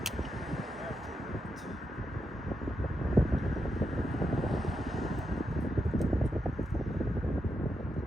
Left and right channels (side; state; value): both; normal; correlation 0.85